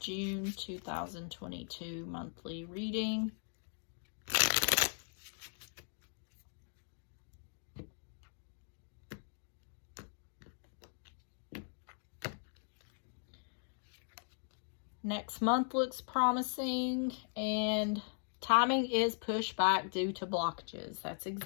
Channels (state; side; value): silent; right; 52 dB below the other